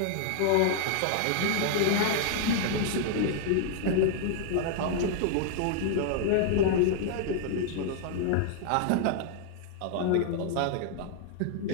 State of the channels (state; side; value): different; both; correlation 0.00